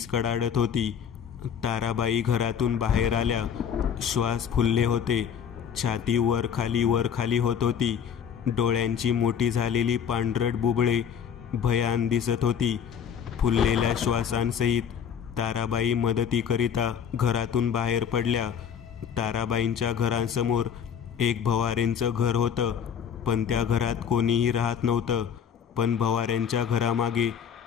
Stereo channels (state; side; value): quieter; right; 7.9 dB